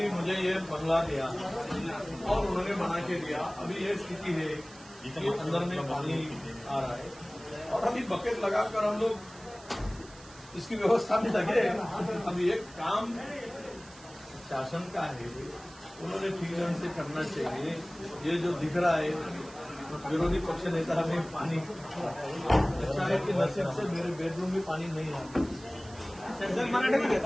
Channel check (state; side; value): noise; right; hiss, 21 dB below the sound